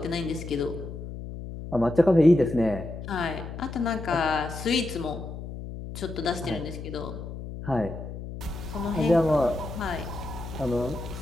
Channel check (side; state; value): left; noise; hum, 9 dB below the sound